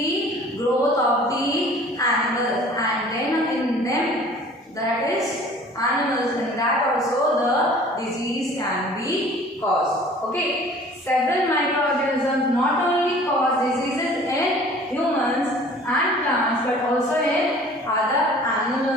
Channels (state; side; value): normal; both; correlation 0.49